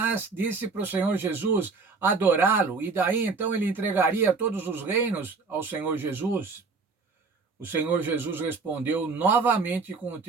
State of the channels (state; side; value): quieter; left; 4.4 dB